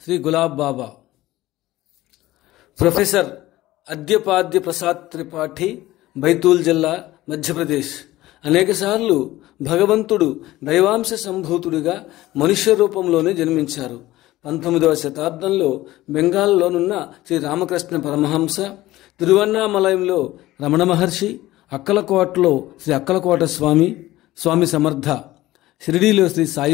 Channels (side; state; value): right; quieter; 16.7 dB